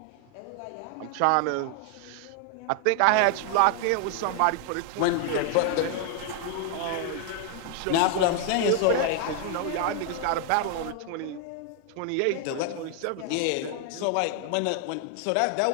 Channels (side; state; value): both; different; correlation 0.00